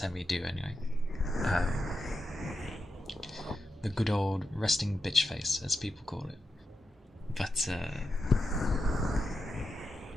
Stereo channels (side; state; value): both; normal; correlation 0.88